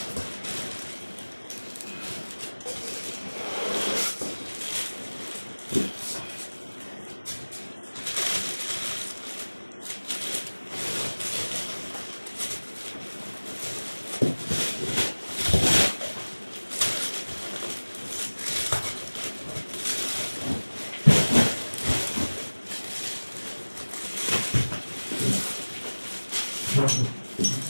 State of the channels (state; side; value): inverted; both; correlation -1.00